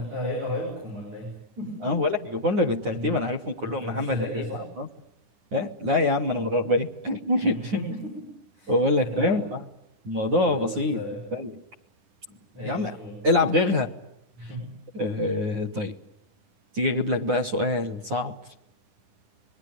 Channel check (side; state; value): left; late; 9.6 ms